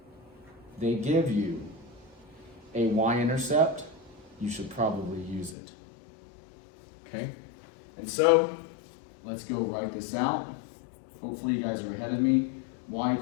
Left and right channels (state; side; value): drops out; right; at 5.6 s